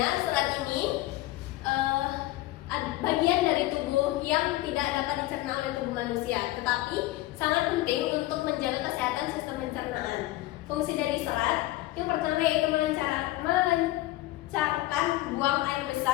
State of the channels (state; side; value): quieter; right; 17.2 dB